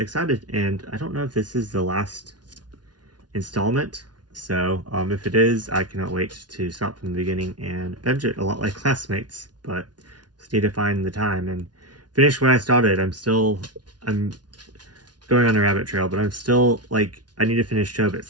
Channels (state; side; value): late; left; 0.69 ms